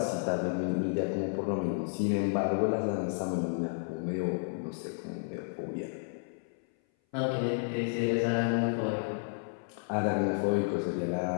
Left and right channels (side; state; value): right; silent; 57 dB below the other